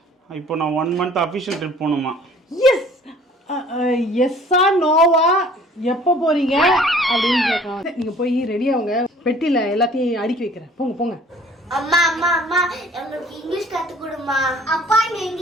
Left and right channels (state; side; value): normal; both; correlation 0.52